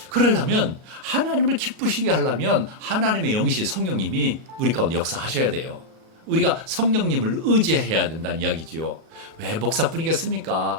그러려면 하나님을 기쁘시게 하려면 하나님의 영이신 성령님이 우리 가운데 역사하셔야 돼요. 우리가 성령님을 의지해야 된다는 이야기지요. 왜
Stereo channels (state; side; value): late; left; 37 ms